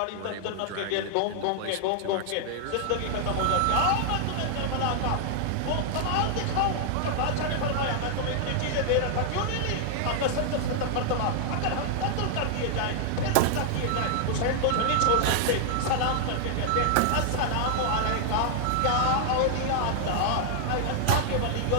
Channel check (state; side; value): different; both; correlation 0.00